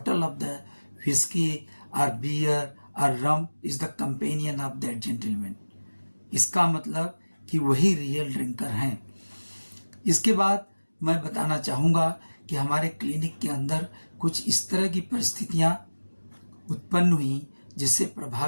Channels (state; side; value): inverted; both; correlation -1.00